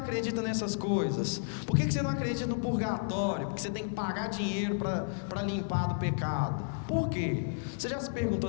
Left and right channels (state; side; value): silent; right; digital silence